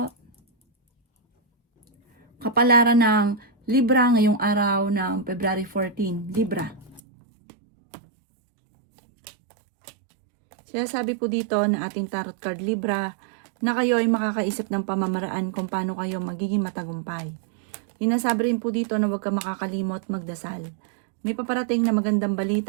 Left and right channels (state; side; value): drops out; left; at 7.0 s